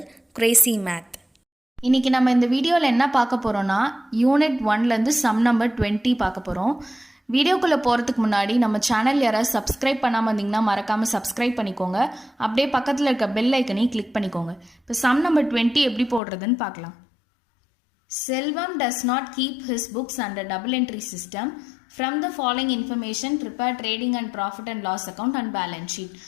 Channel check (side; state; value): right; drops out; at 16.2 s